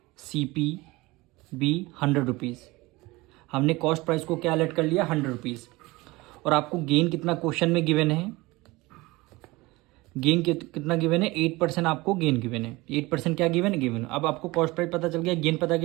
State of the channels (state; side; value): quieter; left; 21.6 dB